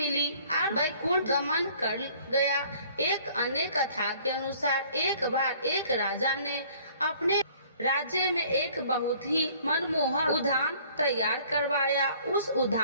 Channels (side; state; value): both; inverted; correlation -0.56